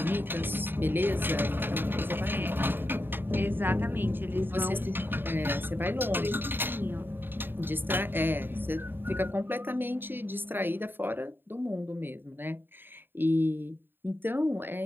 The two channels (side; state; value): left; late; 0.098 ms